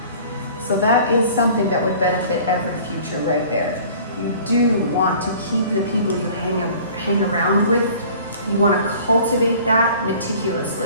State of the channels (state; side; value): inverted; both; correlation -0.48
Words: So that is something that would benefit every future right there. You do want to keep the people you hang around with. You want to cultivate that